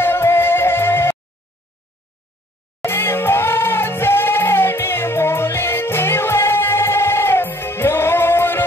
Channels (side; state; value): both; normal; correlation 0.60